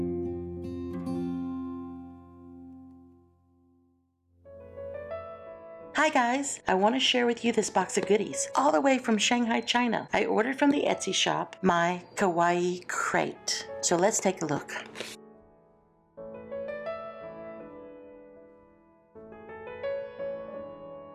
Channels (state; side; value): identical; both; correlation 1.00